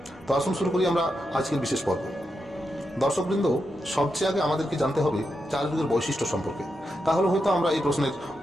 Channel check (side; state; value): both; normal; correlation 0.85